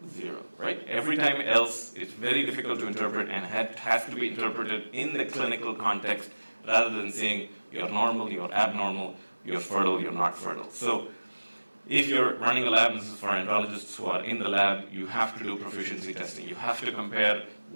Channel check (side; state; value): both; inverted; correlation -1.00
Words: 0, right? Every time else, it's very difficult to interpret and has to be interpreted in the clinical context rather than saying you're normal, you're abnormal, you're fertile, you're not fertile. So if you're running a lab, this is for andrologists who are in the lab, you have to do proficiency testing. You have to compare